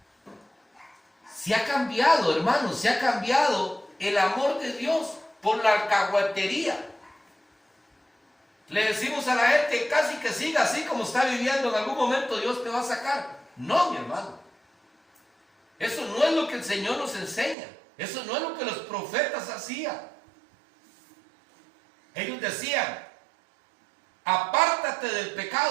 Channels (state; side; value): drops out; left; at 17.6 s